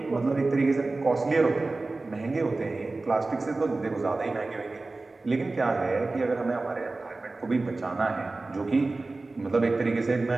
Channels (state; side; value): quieter; left; 3.3 dB